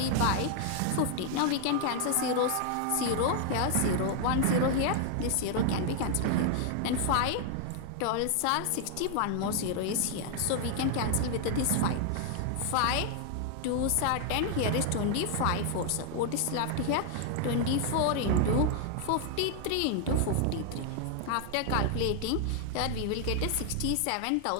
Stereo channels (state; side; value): different; both; correlation 0.00